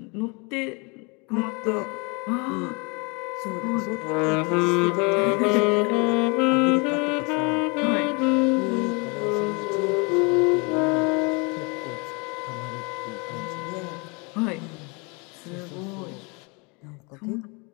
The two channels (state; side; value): quieter; right; 30.7 dB